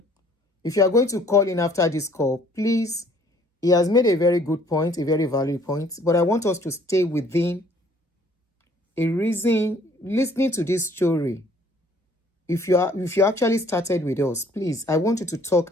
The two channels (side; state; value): both; normal; correlation 0.58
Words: if you are going to call in after this call, please, he has made a very good point, a very valid point, but I want us to stay within a reason, listening to this story. If you actually started with us, please, I want you to talk